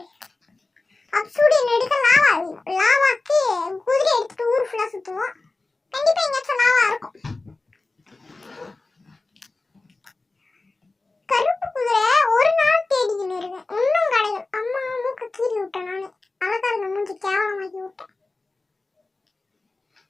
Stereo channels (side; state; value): right; quieter; 3.4 dB